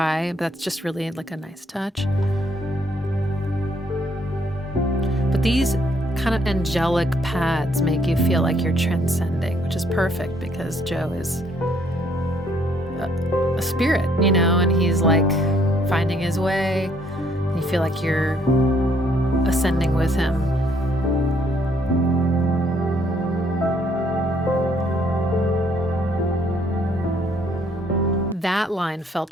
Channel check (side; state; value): both; normal; correlation 0.67